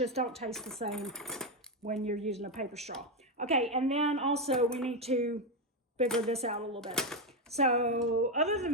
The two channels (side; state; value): both; normal; correlation 0.07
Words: don't taste the same when you're using a paper straw. Okay, and then also we need to figure this out a little bit. So other